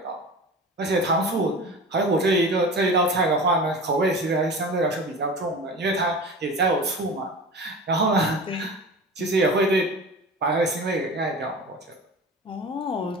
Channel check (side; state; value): both; normal; correlation 0.34